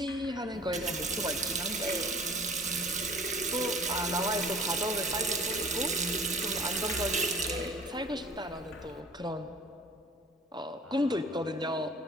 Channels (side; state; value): both; normal; correlation 0.47